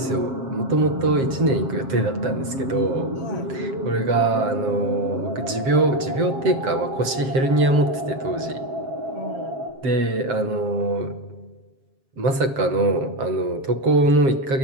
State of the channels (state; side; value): late; left; 7.4 ms